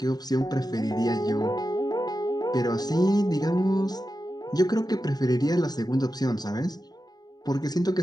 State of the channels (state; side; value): late; right; 0.19 ms